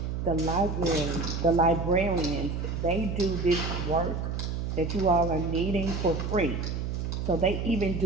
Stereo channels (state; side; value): noise; right; hum, 3 dB below the sound